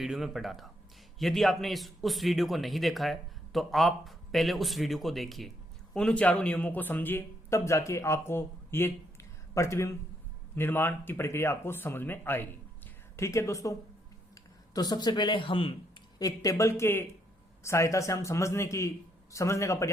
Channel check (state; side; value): normal; both; correlation 0.74